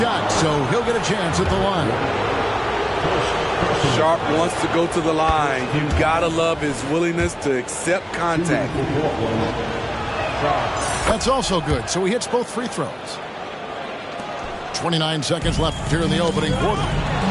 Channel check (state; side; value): identical; both; correlation 1.00